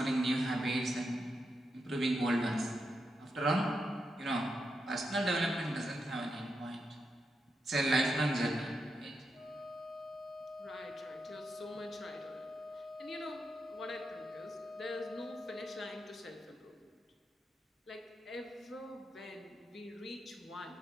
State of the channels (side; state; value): both; normal; correlation 0.85